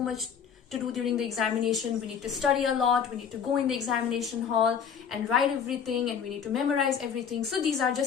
to do during the examination. We need to study a lot. We need to go in the examination hall and write everything, and we need to memorize everything. So these are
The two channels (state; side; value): quieter; right; 7.3 dB